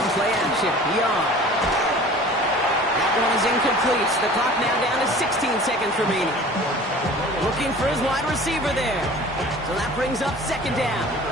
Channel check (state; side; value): normal; both; correlation 0.44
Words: play action. Young. That one is incomplete. The clock now down to 16 seconds remaining. Looking for his wide receiver there. So that brings up 2nd down.